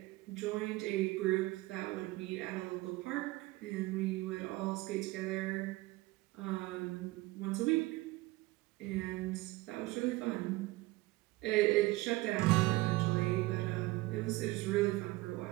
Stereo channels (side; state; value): left; quieter; 20.3 dB